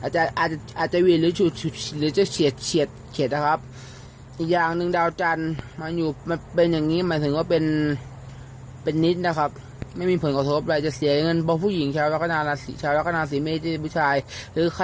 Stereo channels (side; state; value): both; identical; correlation 1.00